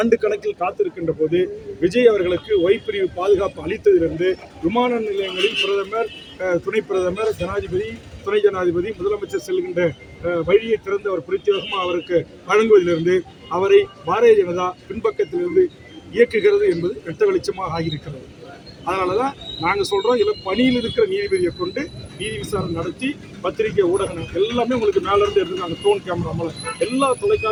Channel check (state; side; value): identical; both; correlation 1.00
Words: கணக்கில் காத்திருக்கின்ற போது விஜய் அவர்களுக்கு ஒய்பிரிவு பாதுகாப்பு அளித்ததிலிருந்து விமான நிலையங்களில் பிரதமர், துணை பிரதமர், ஜனாதிபதி, துணை ஜனாதிபதி, முதலமைச்சர் செல்கின்ற வழியை திறந்து அவர் பிரத்யேகமாக அவருக்கு வழங்குவதிலிருந்து அவரை பாரதிய ஜனதா பின்பக்கத்திலிருந்து இயக்குகிறது என்பது வெட்ட வெளிச்சமாக ஆகியிருக்கிறது. அதனால தான் நாங்கள் சொல்கிறோம், இதில் பணியில் இருக்கிற நீதிபதியை கொண்டு நீதி விசாரணை நடத்தி பத்திரிகை ஊடகம் எல்லாமே உங்களுக்கு மேலேருந்து எடுத்துங்க. அந்த ட்ரோன் கேமரா மூலம் எல்லா